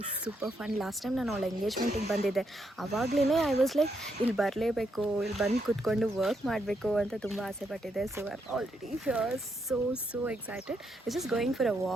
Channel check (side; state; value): both; normal; correlation 0.78